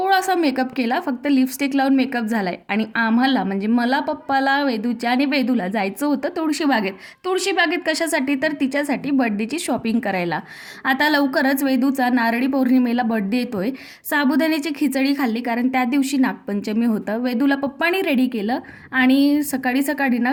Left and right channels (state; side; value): identical; both; correlation 1.00